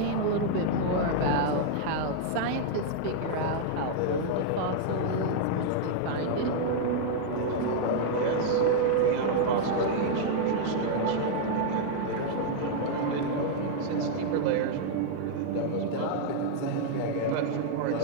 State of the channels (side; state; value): both; different; correlation -0.01